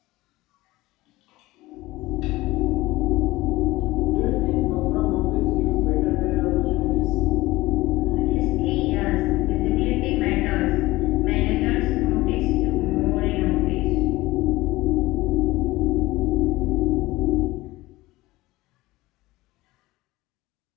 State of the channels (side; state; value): right; quieter; 19.2 dB